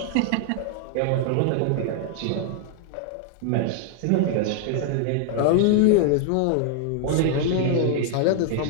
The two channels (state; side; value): different; both; correlation 0.00